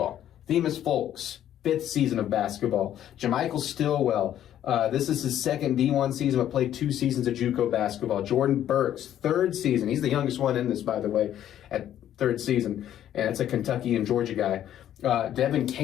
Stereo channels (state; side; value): quieter; right; 11.2 dB